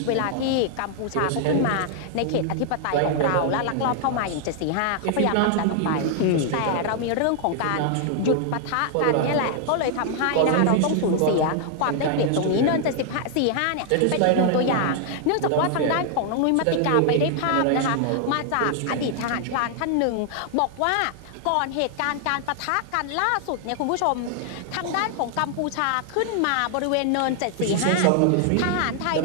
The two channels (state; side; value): different; both; correlation 0.00